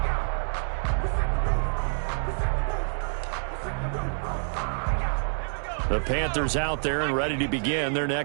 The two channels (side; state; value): left; silent; 60 dB below the other